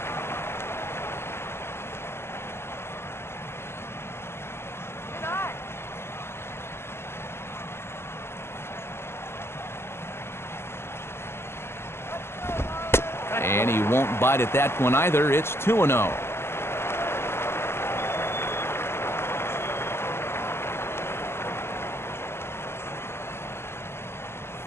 And he won't bite at that one either. It's 2-0.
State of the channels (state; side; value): late; right; 0.12 ms